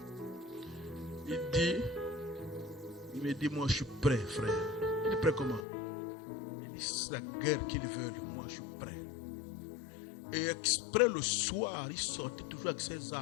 il me dit, moi je suis prêt, frère. Il est prêt comment? Il dit, c'est la guerre qu'ils veulent, moi je suis prêt. Et exprès le soir, il sortait toujours avec ses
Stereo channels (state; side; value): drops out; right; at 5.7 s